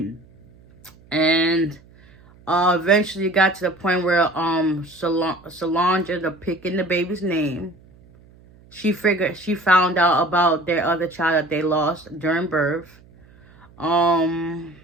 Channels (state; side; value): noise; right; hum, 26 dB below the sound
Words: And eventually it got to the point where Solange ended up picking the baby's name. She found out about their other child that they lost during birth.